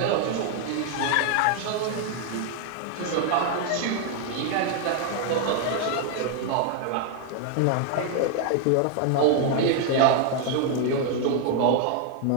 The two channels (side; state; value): both; different; correlation 0.00